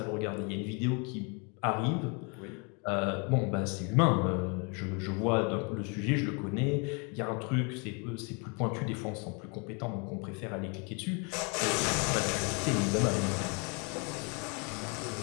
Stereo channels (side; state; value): right; quieter; 33.8 dB